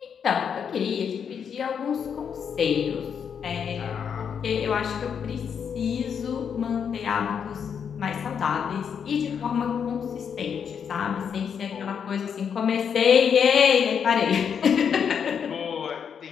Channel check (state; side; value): quieter; right; 7.3 dB